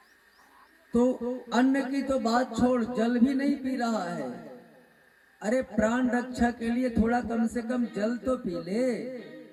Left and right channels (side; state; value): both; identical; correlation 1.00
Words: तो अन्न की तो बात छोड़, जल भी नहीं पी रहा है। अरे प्राण रक्षा के लिए थोड़ा कम से कम जल तो पी ले।